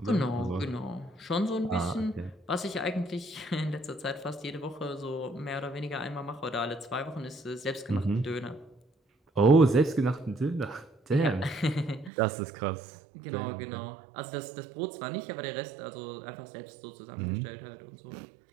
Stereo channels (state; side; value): drops out; left; at 12.1 s